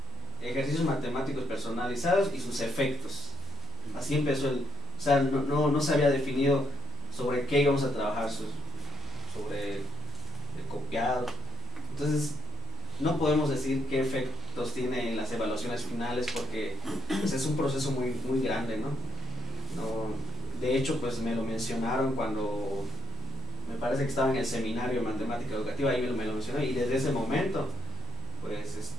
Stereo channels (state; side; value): normal; both; correlation 0.73